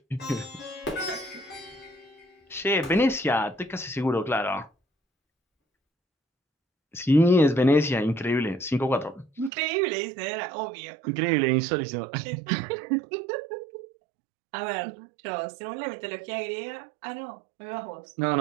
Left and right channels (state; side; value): drops out; left; at 9.5 s